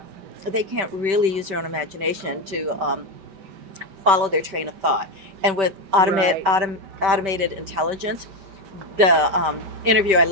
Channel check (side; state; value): left; late; 5.2 ms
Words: they can't really use their own imagination to follow their train of thought. And with Right. automated intelligence, the interview I